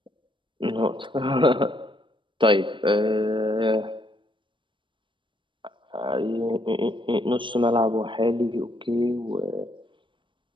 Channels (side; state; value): left; late; 0.24 ms